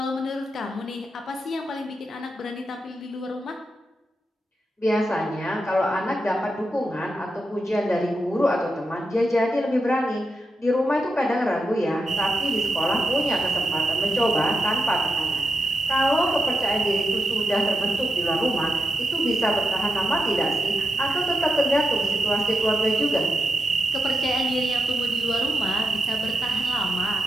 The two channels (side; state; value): both; normal; correlation 0.87